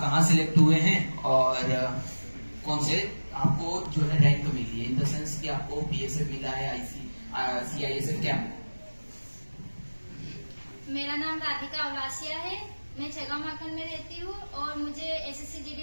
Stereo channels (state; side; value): inverted; both; correlation -1.00